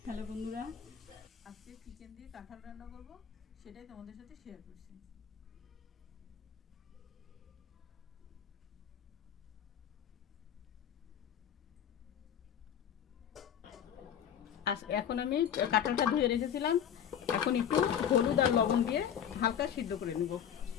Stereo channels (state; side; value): quieter; right; 9.1 dB